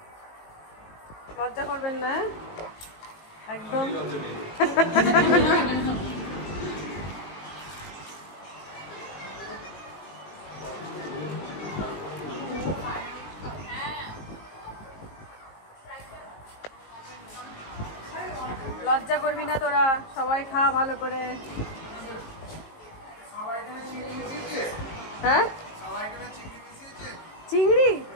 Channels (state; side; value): late; right; 19 ms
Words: লজ্জা করবেন না একদম। লজ্জা করবি না তোরা, সবাই খা ভালো করে। হ্যাঁ চিংড়ি